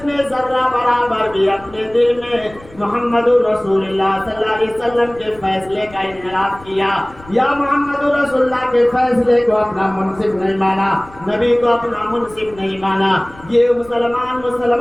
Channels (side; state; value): left; noise; rumble, 22 dB below the sound